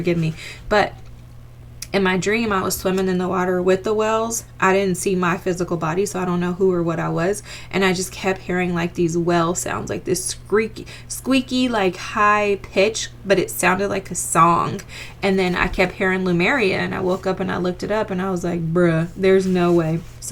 me. But in my dream, I was swimming in the water with the whales. I didn't see my physical body, so I don't know who or what I was. And I just kept hearing like these whale sounds, like this squeaky, like high pitch, but it sounded like a song. And then I kept hearing Lumeria, and I woke up and I looked it up, and I was like, bruh, there's no way.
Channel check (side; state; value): both; identical; correlation 1.00